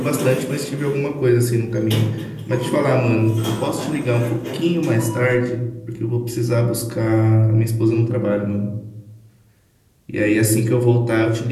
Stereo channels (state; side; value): identical; both; correlation 1.00